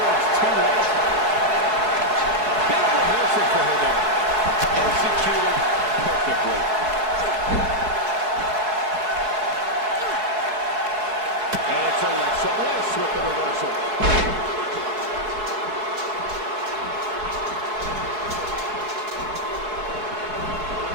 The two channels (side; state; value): left; late; 4.7 ms